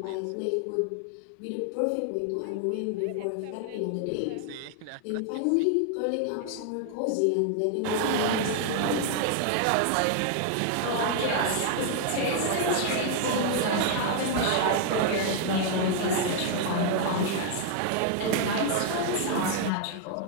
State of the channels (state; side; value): different; both; correlation 0.00